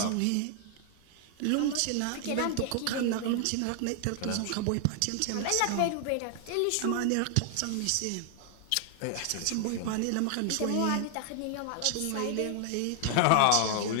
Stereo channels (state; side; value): different; both; correlation 0.00